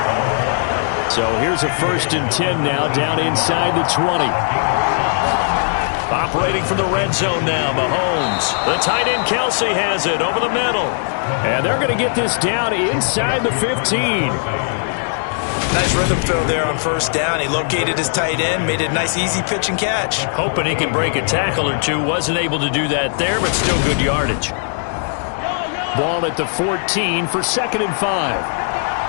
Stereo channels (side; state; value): right; silent; digital silence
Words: So here's a 1st and 10 now, down inside the 20. Operating from the red zone now, Mahomes. The tight end Kelsey has it over the middle. And they're going to get this down inside the 15. Nice rhythm throw there on first down. He located his tight end, made it a nice easy pitch and catch. Hoping he can break a tackle or two. Wasn't able to do that there, but still good yardage. Ball at the 14 for 2nd and 5.